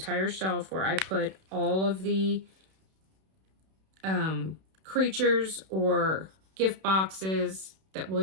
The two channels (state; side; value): late; left; 31 ms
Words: shelf where I put all of the creatures or gift boxes that